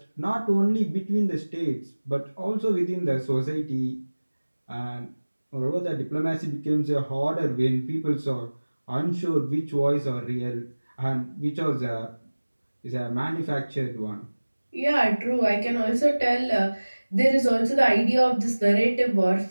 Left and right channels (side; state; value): both; inverted; correlation -1.00